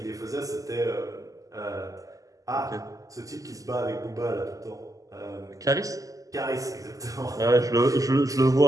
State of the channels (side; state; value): left; late; 0.17 ms